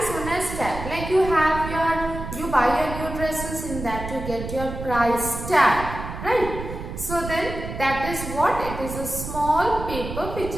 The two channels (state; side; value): noise; right; rumble, 8 dB below the sound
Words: known as tag. Like you buy your new dresses, in that you get your price tag, right? So then that is what? It is a small paper which